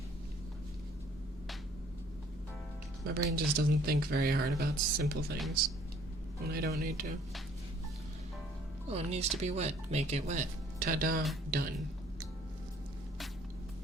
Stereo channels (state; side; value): normal; both; correlation 0.58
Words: My brain just doesn't think very hard about simple things when I don't need to. Oh, it needs to be wet. Make it wet. Ta-da. Done.